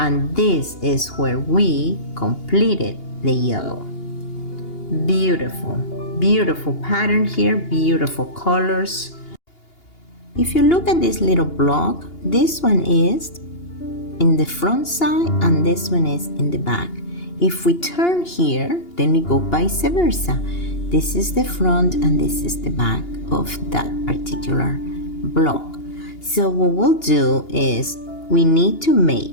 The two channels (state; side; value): late; right; 2.8 ms